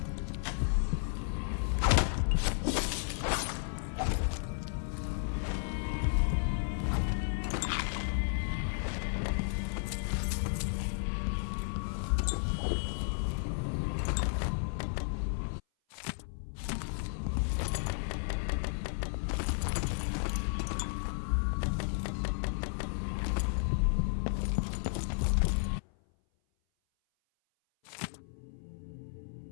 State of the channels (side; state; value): right; silent; 55 dB below the other